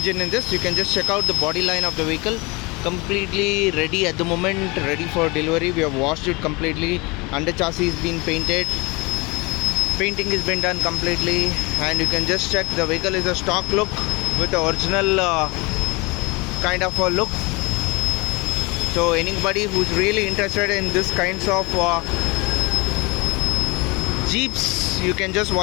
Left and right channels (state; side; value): quieter; right; 26.4 dB